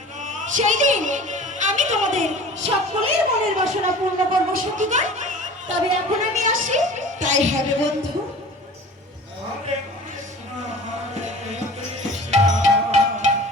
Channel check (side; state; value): both; normal; correlation 0.41